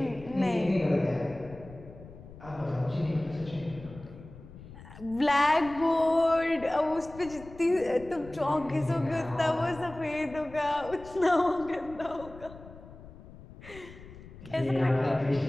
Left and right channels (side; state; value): left; noise; rumble, 17 dB below the sound